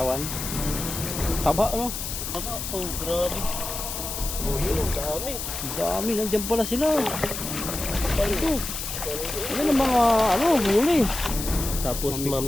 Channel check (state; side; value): noise; left; hiss, 6 dB below the sound